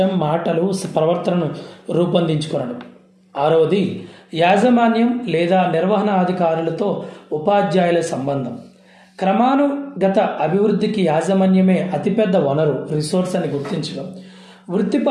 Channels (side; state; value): both; identical; correlation 1.00